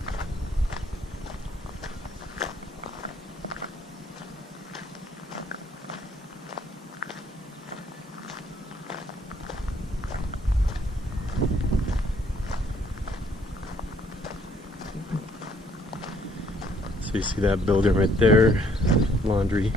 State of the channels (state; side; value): normal; both; correlation 0.65